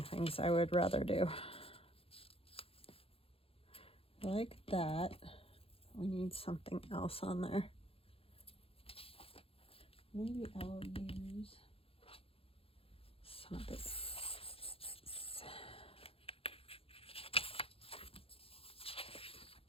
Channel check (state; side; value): late; right; 0.27 ms